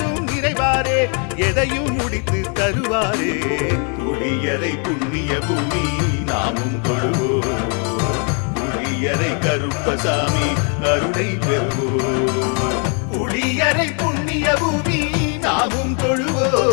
நிறைவாரே எதையும் முடித்து தருவாரே புளியரை புண்ணிய பூமி நாமும் கொள்வோம் புளியரை கருப்பசாமி அருளை பெறுவோம் புளியரை புண்ணிய பூமி நாமும்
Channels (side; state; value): right; quieter; 39.0 dB